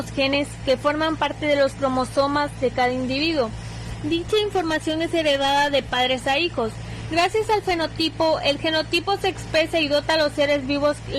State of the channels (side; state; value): both; identical; correlation 1.00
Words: genes que forman parte de los cromosomas de cada individuo. Dicha información es heredada de padres a hijos. Gracias al fenotipo, el genotipo se expresa y dota a los seres vivos